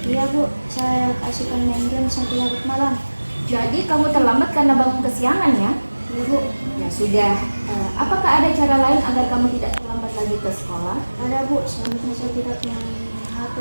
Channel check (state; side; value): inverted; both; correlation -1.00